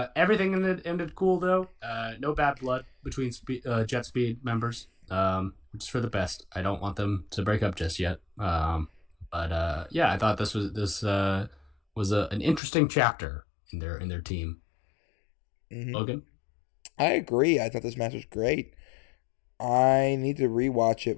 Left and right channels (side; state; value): right; drops out; at 12.6 s